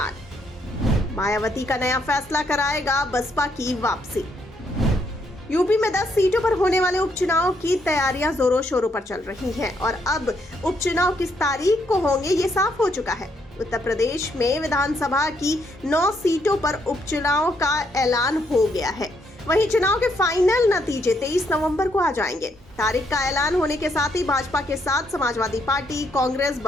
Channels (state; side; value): normal; both; correlation 0.74